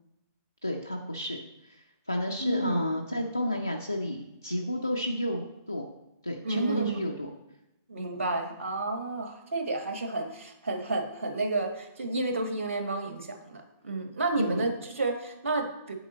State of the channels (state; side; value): inverted; both; correlation -0.70